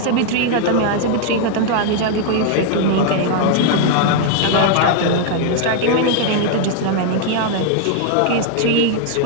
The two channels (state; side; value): different; both; correlation 0.00